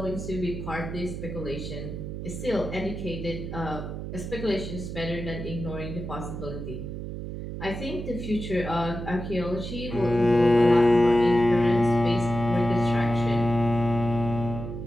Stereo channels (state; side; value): noise; right; hum, 7 dB below the sound